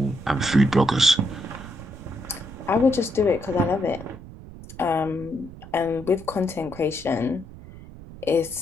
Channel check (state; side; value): noise; right; rumble, 16 dB below the sound